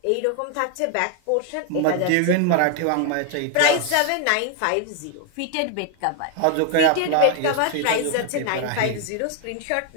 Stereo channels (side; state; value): both; different; correlation 0.00